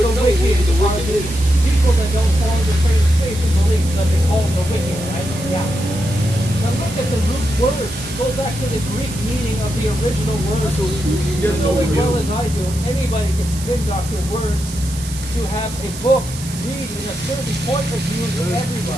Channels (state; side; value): noise; right; hiss, 13 dB below the sound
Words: the would know who wicked the are wicked the is. people that don't follow the same faith and belief that they call the wicked, right? Yeah. Now look at the root word. Go back to the Greek meaning of the original word. So you You get know as well no as I do, anybody can spin doctor words to have a book read in a certain point of view to